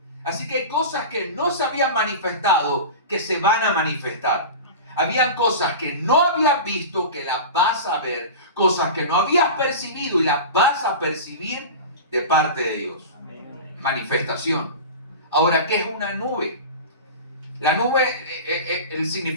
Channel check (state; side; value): inverted; both; correlation -0.30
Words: Así que hay cosas que no se habían manifestado que se van a manifestar. Habían cosas que no habías visto que las vas a ver, cosas que no habías percibido y las vas a percibir de parte de Dios. Manifestación. Ahora, ¿qué es una nube? La nube, el